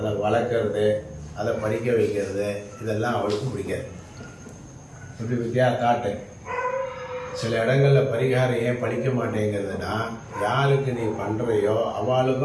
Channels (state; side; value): identical; both; correlation 1.00